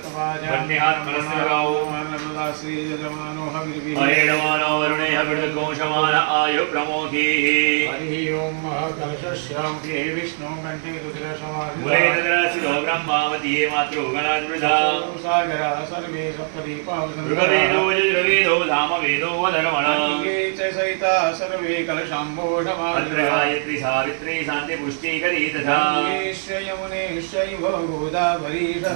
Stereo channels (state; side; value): silent; left; digital silence